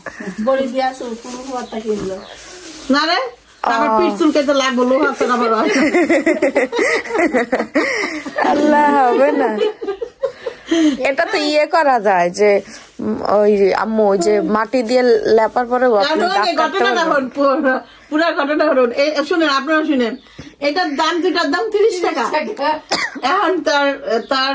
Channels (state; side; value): identical; both; correlation 1.00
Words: কিনলো না রে, আমার পিঠ চুলকাইতে লাগবো, লোহা তো আবার আল্লাহ হবে না। এটা তো ইয়ে করা যায় যে ওই আম্মু যে মাটি দিয়ে লেপার পরে পুরা ঘটনা হরুন। শুনেন, আপনারা শুনেন, এটার দাম, দুটার দাম 30 টাকা। এখন তার